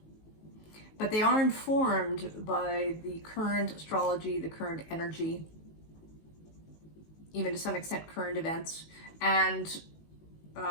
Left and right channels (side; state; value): right; late; 19 ms